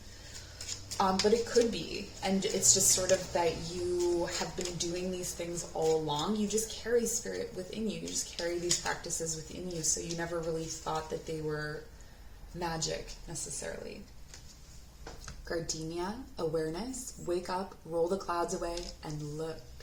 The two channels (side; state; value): both; identical; correlation 1.00